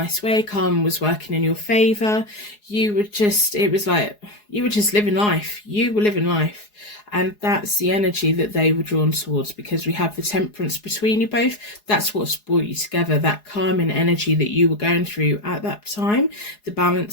way. Karma was working in your favour. You were just living life. You were living life. And that's the energy that they were drawn towards, because we have the Temperance between you both. That's what's brought you together, that calming energy that you were going through at that time, the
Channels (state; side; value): late; right; 4.8 ms